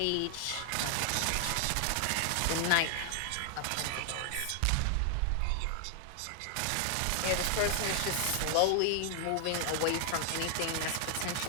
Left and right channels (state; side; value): different; both; correlation 0.00